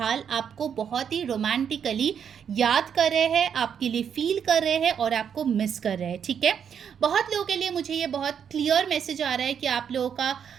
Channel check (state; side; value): quieter; left; 7.8 dB